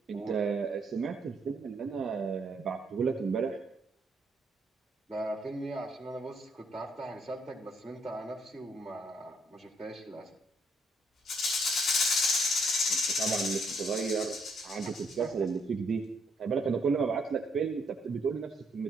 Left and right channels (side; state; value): both; normal; correlation 0.71